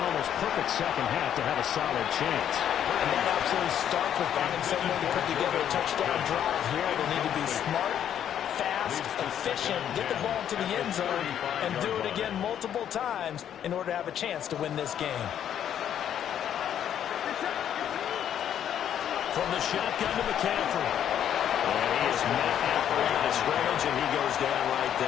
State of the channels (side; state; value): right; quieter; 9.8 dB